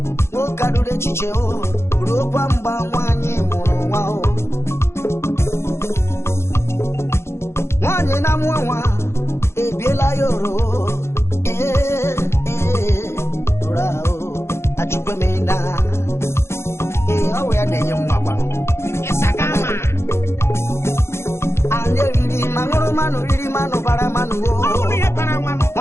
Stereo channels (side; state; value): right; late; 0.13 ms